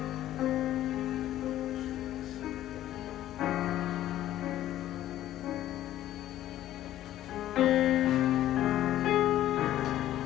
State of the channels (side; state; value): right; quieter; 13.2 dB